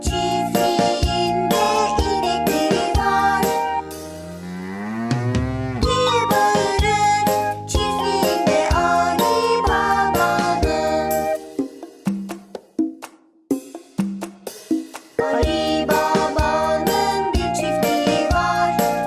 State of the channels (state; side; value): identical; both; correlation 1.00